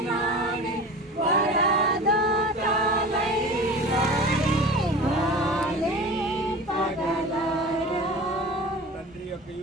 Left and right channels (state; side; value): normal; both; correlation 0.36